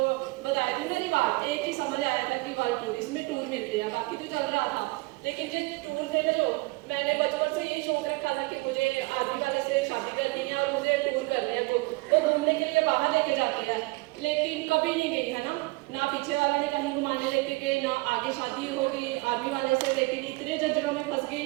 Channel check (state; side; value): quieter; left; 24.7 dB